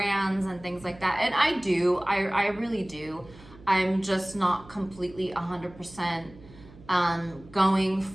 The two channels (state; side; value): noise; right; hum, 21 dB below the sound